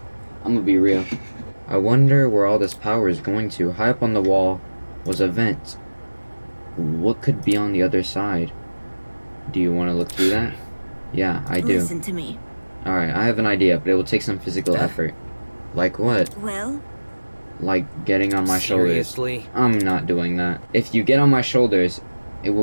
I'm gonna be real. I wonder where all this power is going to. High up on the wall was a vent. What could be on the other side? Do you want to look through that? Yeah, I do. Listen to me. Alright, I have an idea, but it will take some physical effort. Like what? Well, Like getting on my shoulders. Seriously? I'm not doing that. If you get on my shoulders, it will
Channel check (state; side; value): inverted; both; correlation -1.00